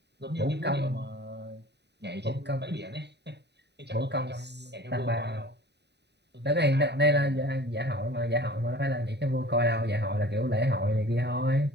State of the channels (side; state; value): left; late; 0.50 ms